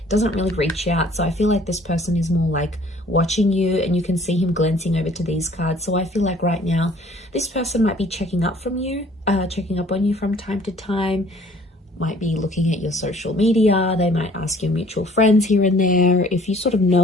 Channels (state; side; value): normal; both; correlation 0.55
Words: It doesn't really reach out, so I feel like this person is more like watching you, and you can see him glancing over to these cards. So I feel like right now this person might be checking up on you from time to time, might be looking at your social media. They might ask your mutual friends here and there. If you sort of